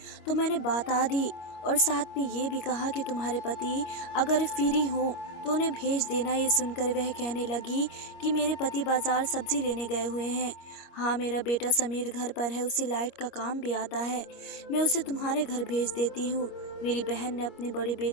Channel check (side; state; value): right; late; 25 ms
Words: तो मैंने बता दी, और साथ में ये भी कहा कि तुम्हारे पति अगर फ्री हो तो उन्हें भेज देना। ये सुनकर वह कहने लगी कि मेरे पति बाजार सब्जी लेने गए हुए हैं। हाँ, मेरा बेटा समीर घर पर है, उसे लाइट का काम भी आता है। मैं उसे तुम्हारे घर भेज देती हूँ। मेरी बहन ने अपने बड़े